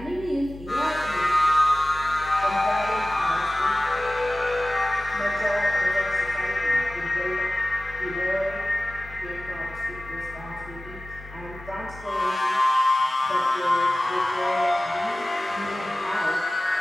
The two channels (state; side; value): normal; both; correlation 0.97